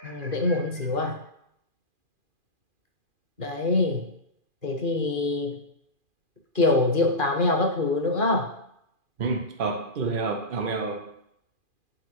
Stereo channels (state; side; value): late; left; 2.4 ms